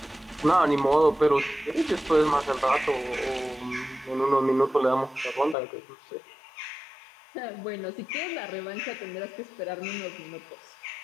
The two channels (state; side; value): drops out; right; at 5.6 s